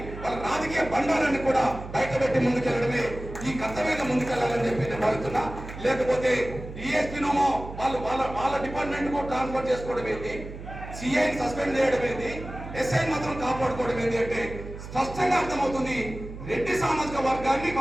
వాళ్ళ రాజకీయ బండారాన్ని కూడా బయటపెట్టి ముందుకెళ్లడమే ఈ కర్తవ్యంగా ముందుకెళ్లాలని చెప్పి నేను భావిస్తున్నా. లేకపోతే డిఎస్పీనోమో వాళ్ళ డిపార్ట్మెంట్ కు ట్రాన్స్ఫర్ చేసుకోవడం ఏంటి, సిఐని సస్పెండ్ చేయడం ఏంటి, ఎస్ఐ మాత్రం కాపాడుకోవడం ఏంటి అంటే స్పష్టంగా అర్థమవుతుంది రెడ్డి సామాజిక వర్గాన్ని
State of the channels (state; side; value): noise; right; hum, 11 dB below the sound